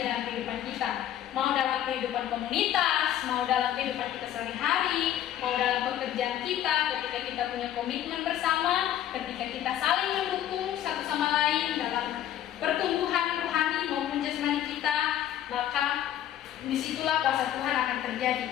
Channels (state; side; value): quieter; right; 11.6 dB